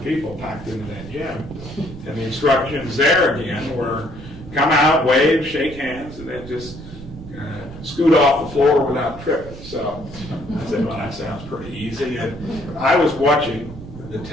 people packed into that gym. And the instructions there again were come out, wave, shake hands, and then just scoot off the floor without tripping. So I said, well, that sounds pretty easy. And I was watching the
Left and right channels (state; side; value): noise; right; rumble, 14 dB below the sound